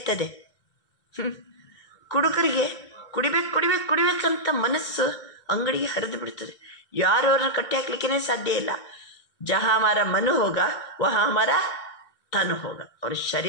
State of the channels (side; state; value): right; late; 2.1 ms